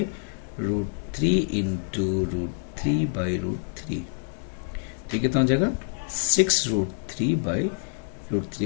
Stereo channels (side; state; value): right; silent; 61 dB below the other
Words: इंटू √3/√3। तो कितना हो जाएगा